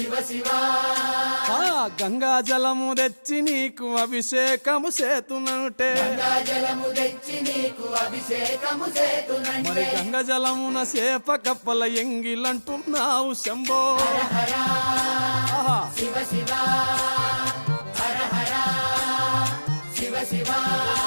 శివ గంగా జలము తెచ్చి నీకు అభిషేకము చేతునంటే గంగా జలము తెచ్చి నీకు అభిషేకము మరి చేతునంటే గంగ జలమున సేప కప్పల ఎంగిలంటున్నావు శంభో హర హర ఆహా. శివ శివ హర హర శివ శివ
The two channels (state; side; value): inverted; both; correlation -1.00